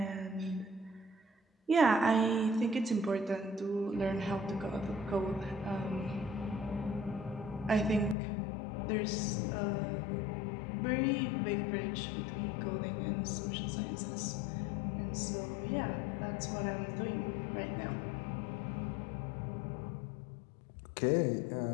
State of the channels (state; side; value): drops out; right; at 8.2 s